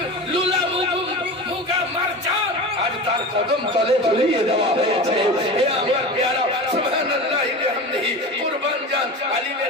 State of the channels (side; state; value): both; normal; correlation 0.30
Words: কদম তলে ঝুলিয়ে দেওয়া হয়েছে। হে আমার প্যারা সুবহানাল্লাহি বিহামদিহি কুরবান জান আলিমে